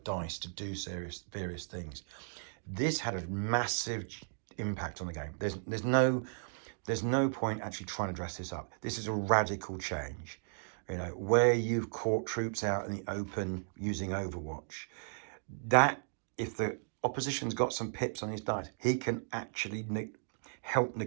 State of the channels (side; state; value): left; silent; digital silence